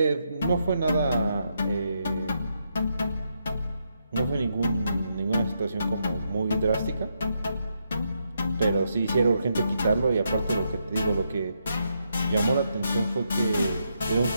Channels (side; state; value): both; inverted; correlation -0.80